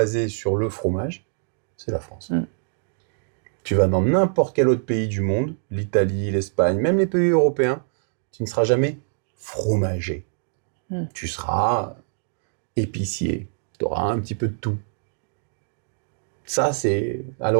sur le fromage, c'est la France. Tu vas dans n'importe quel autre pays du monde, l'Italie, l'Espagne, même les pays européens, tu ne seras jamais fromager. Tu seras épicier. Tu auras un petit peu de tout. Ça, c'est à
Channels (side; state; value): left; silent; 62 dB below the other